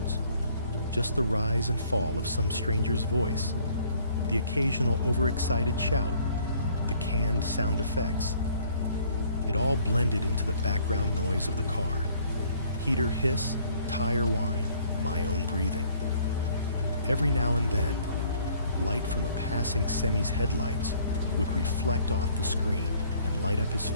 just the rise and fall of some stranger's voice, the occasional overexcited shout, the canned sound effects. It all blended into the background noise of the car. Heater hiss, tire whine, my own breathing. Every now and then, light from a passing semi's headlights would reflect off the screen and light up his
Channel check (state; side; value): inverted; both; correlation -0.60